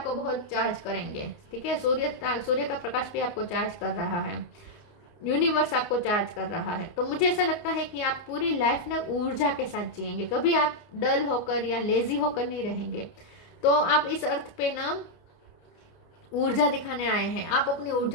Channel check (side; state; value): right; late; 29 ms